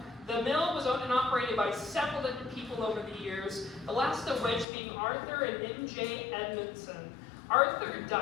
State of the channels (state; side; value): drops out; right; at 4.7 s